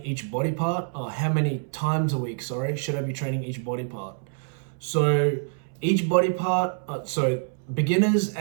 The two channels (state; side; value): silent; left; 61 dB below the other